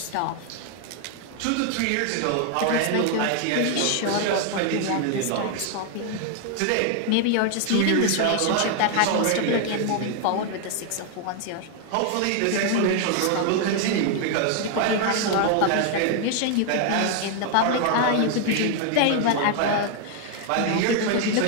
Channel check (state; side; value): different; both; correlation 0.00